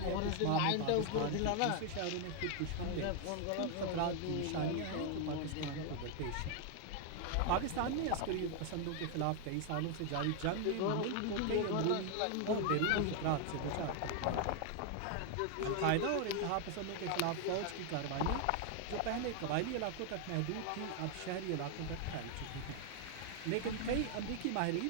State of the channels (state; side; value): different; both; correlation 0.00